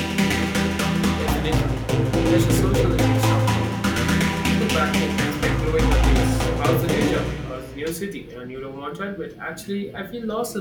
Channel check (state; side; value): identical; both; correlation 1.00